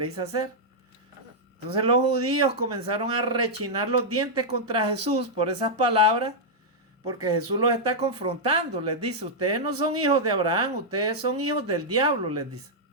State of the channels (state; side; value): normal; both; correlation -0.06